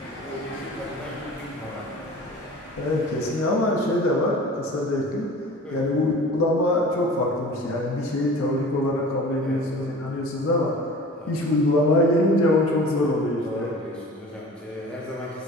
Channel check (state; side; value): normal; both; correlation 0.41